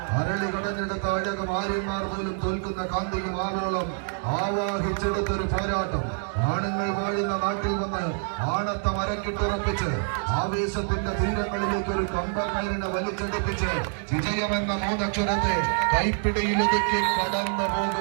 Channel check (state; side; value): silent; left; 56 dB below the other